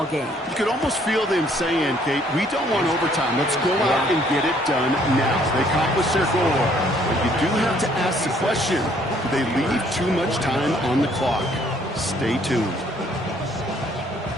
game. You could almost feel them saying, Kate, we don't want overtime. Let's go out and get it done now. They accomplished their goal. But you do have to ask the question, do they leave too much time on the clock? Stay tuned.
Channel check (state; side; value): normal; both; correlation 0.63